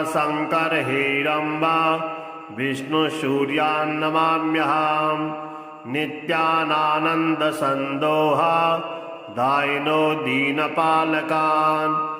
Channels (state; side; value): identical; both; correlation 1.00